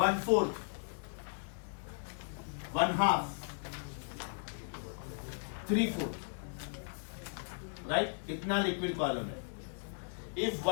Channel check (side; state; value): right; silent; 53 dB below the other